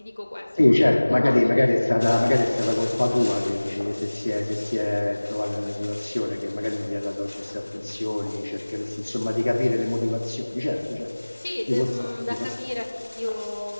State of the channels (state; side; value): inverted; both; correlation -1.00